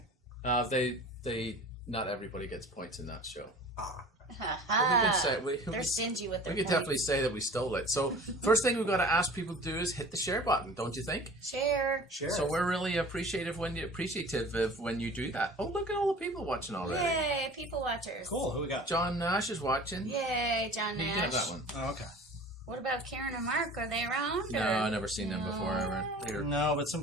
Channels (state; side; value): normal; both; correlation 0.42